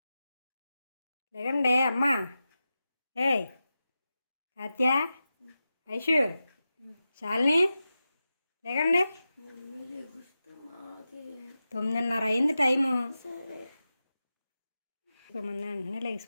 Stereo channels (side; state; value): both; inverted; correlation -0.93